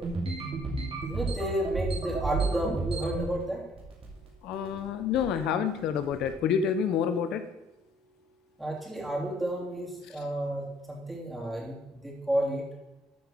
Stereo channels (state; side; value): normal; both; correlation 0.62